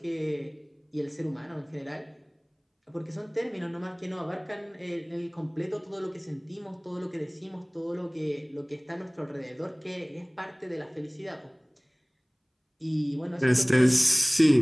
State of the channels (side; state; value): both; identical; correlation 1.00